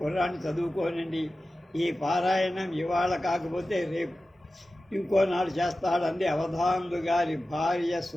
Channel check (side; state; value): both; normal; correlation 0.95